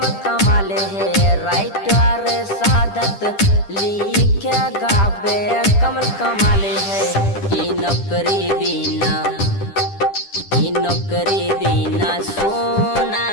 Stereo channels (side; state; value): right; late; 10 ms